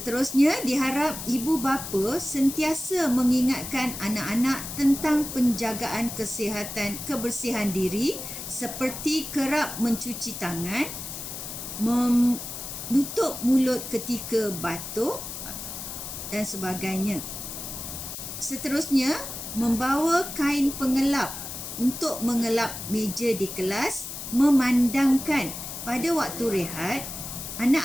diharap ibu bapa sentiasa mengingatkan anak-anak tentang penjagaan kesihatan, kebersihan diri seperti kerap mencuci tangan, menutup mulut ketika batuk dan sebagainya. Seterusnya, membawa kain pengelap untuk mengelap meja di kelas, memandangkan pada waktu rehat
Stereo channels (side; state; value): left; noise; hiss, 8 dB below the sound